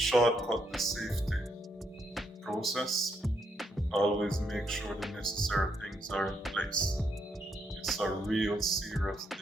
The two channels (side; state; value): both; normal; correlation 0.76